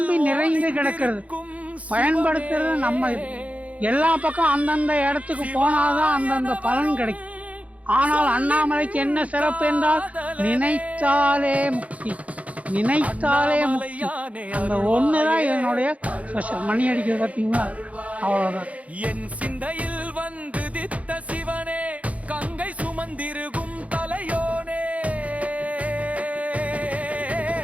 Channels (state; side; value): late; left; 0.067 ms